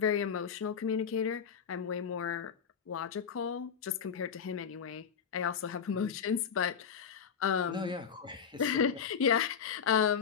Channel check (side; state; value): right; quieter; 7.0 dB